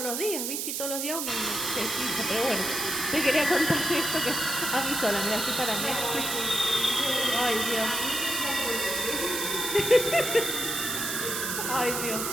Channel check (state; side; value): noise; right; hiss, 2 dB below the sound